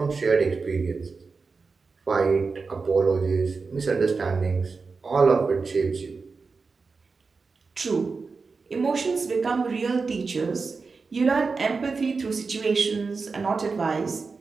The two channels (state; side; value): quieter; left; 4.5 dB